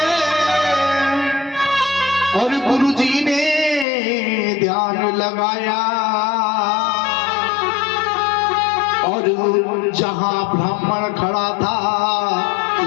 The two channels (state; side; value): drops out; right; at 3.9 s